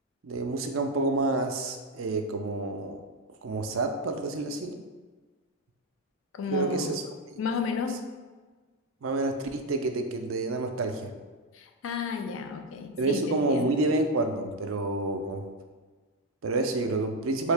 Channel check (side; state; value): both; normal; correlation 0.08